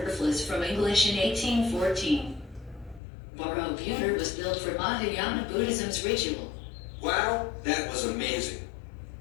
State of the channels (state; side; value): drops out; right; at 3.0 s